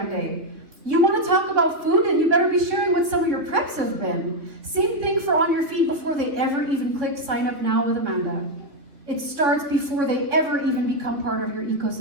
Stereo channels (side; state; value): left; late; 3.5 ms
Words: day. You want to talk about food, and you better be sharing what some of your preps have been. Same thing for on your feed before they ever even click sign up now with Amanda. It starts before they ever even become part of your